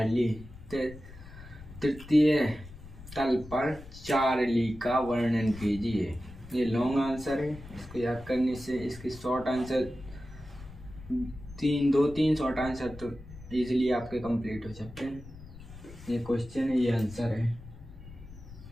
तृतीय तल पर चार्ली का वर्णन कीजिए। ये लॉन्ग आंसर है, इसको याद करने से इसके शॉर्ट आंसर दो तीन शॉर्ट आंसर तो इजीली आपके कंप्लीट हो सकते हैं। ये क्वेश्चन है, ये आंसर है।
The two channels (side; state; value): left; noise; rumble, 16 dB below the sound